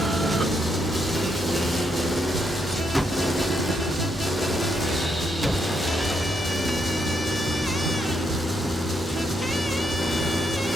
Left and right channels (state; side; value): normal; both; correlation 0.77